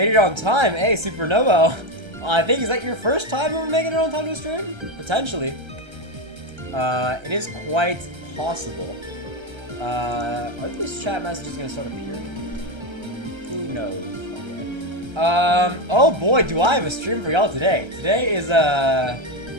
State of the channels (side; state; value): left; late; 1.3 ms